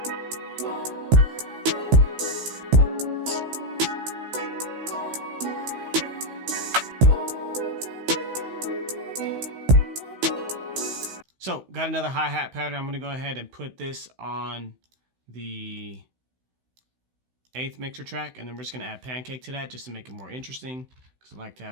So got another hi-hat pattern. I'm gonna go ahead and put this on the 8th mixer track, and then we're just gonna add pancake to that just to make it more interesting, because I like to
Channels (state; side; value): late; left; 16 ms